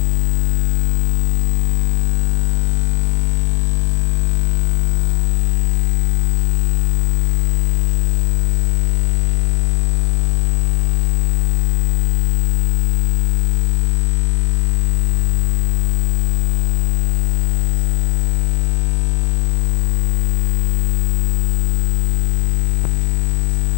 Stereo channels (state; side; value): silent; right; digital silence